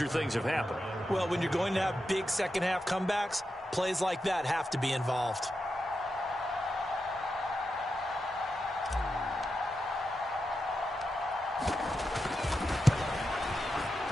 things have happened. Well, when you're going to have big second-half comebacks, plays like that have to be involved.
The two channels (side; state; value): both; normal; correlation 0.88